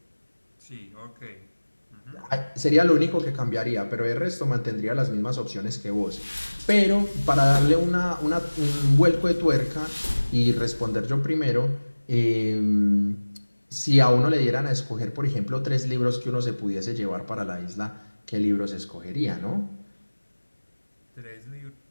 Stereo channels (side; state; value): both; inverted; correlation -1.00